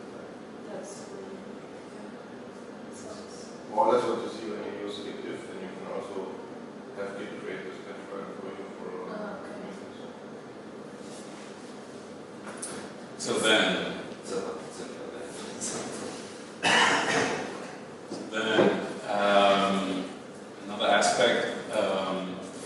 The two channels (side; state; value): both; identical; correlation 1.00